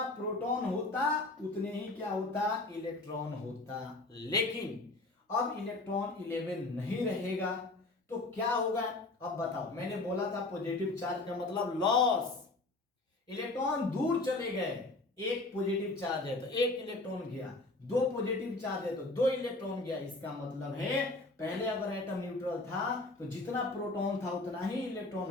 प्रोटॉन होता उतने ही क्या होता, इलेक्ट्रॉन होता, लेकिन अब इलेक्ट्रॉन 11 नहीं रहेगा तो क्या होगा, अब बताओ। मैंने बोला था पॉजिटिव चार्ज का मतलब लॉस, इलेक्ट्रॉन दूर चले गए, एक पॉजिटिव चार्ज है तो एक इलेक्ट्रॉन गया, दो पॉजिटिव चार्ज है तो दो इलेक्ट्रॉन गया। इसका मतलब है पहले अगर एटम न्यूट्रल था तो जितना प्रोटॉन था उतना ही इलेक्ट्रॉन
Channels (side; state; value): right; quieter; 3.1 dB